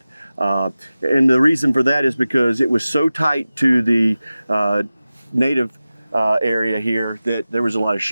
And the reason for that is because it was so tight to the native area here that there was a lot of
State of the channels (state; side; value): inverted; both; correlation -0.96